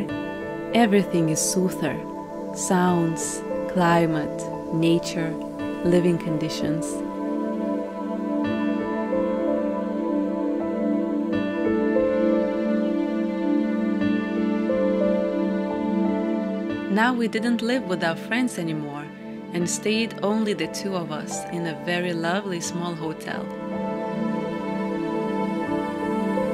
everything is soother: sounds, climate, nature, living conditions. Now we didn't live with our friends anymore and stayed only the two of us in a very lovely small hotel.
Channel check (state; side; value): identical; both; correlation 1.00